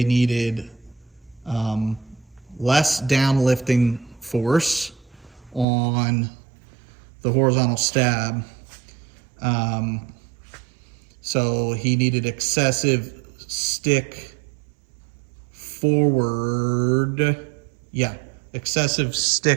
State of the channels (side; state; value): left; drops out; at 5.7 s